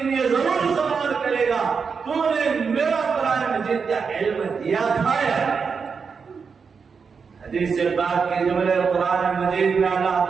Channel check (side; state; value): left; quieter; 5.6 dB